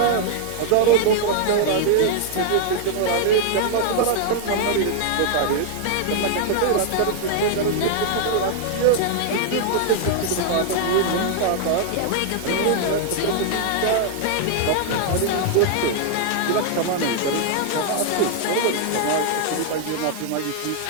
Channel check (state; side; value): different; both; correlation -0.01